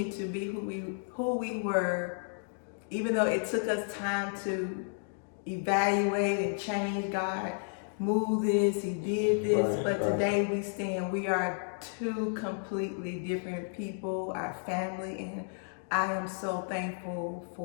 to be who we were, even though it took us time to evaluate and change. God moved this, He did this, but today we are 2 completely different people, our family, and I am so thankful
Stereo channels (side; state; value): right; silent; digital silence